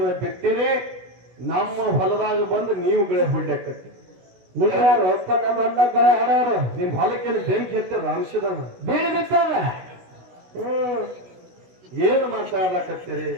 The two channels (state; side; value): late; left; 16 ms